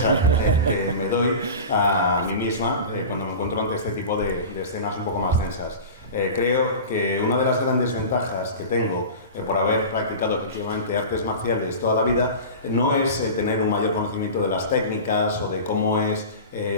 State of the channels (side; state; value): both; inverted; correlation -0.32